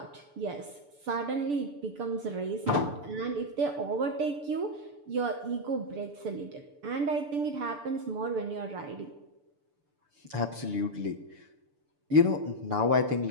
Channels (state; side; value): late; left; 6.9 ms